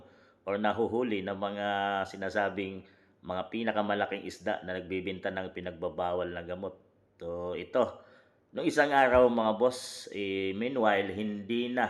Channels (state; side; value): identical; both; correlation 1.00